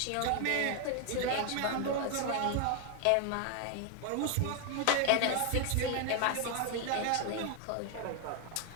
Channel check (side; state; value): both; different; correlation 0.01